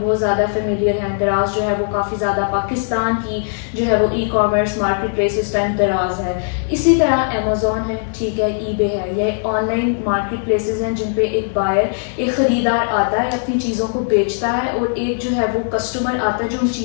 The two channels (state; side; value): silent; right; digital silence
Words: बहुत ज़्यादा फेमिलियर हैं। दराज जो है वो काफ़ी ज़्यादा पाकिस्तान की जो है वो ई कॉमर्स मार्केट प्लेस इस टाइम दराज है। इसी तरह अमेजोन है, ठीक है, ईबे है, ये ऑनलाइन मार्केट प्लेसेस हैं जिन पे एक बायर, एक ख़रीदार आता है, अपनी चीज़ों को बेचता है, और एक जो है वो कस्टमर आता है जो उन